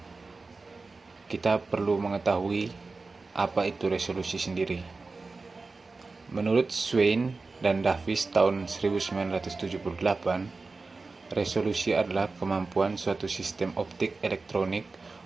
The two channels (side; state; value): left; quieter; 3.9 dB